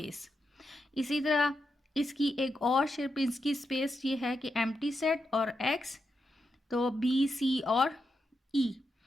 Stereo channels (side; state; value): both; normal; correlation 0.86